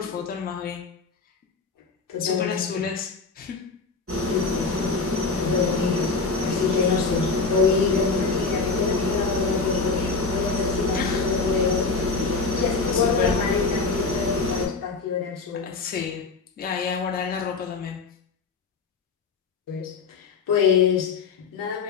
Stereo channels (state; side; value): quieter; right; 4.4 dB